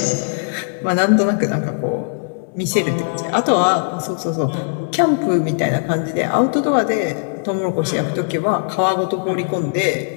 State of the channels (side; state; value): right; silent; digital silence